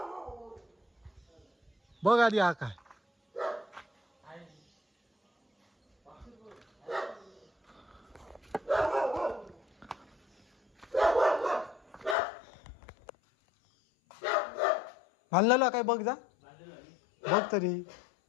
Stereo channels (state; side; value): drops out; right; at 12.2 s